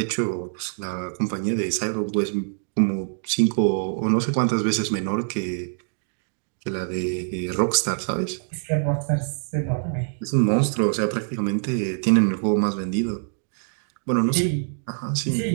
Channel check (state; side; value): silent; left; digital silence